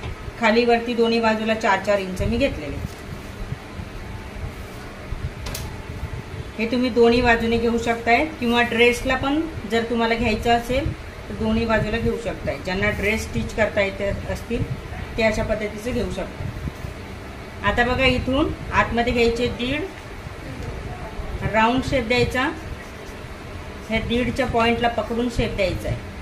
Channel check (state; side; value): identical; both; correlation 1.00